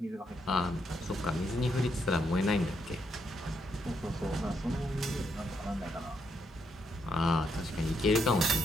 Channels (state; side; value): normal; both; correlation 0.77